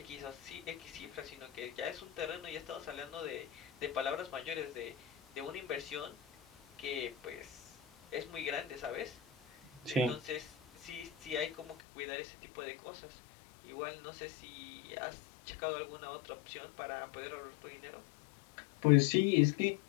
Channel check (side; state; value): right; drops out; at 11.8 s